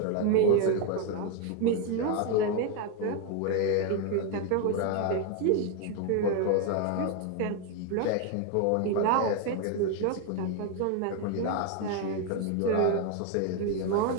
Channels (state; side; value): different; both; correlation 0.01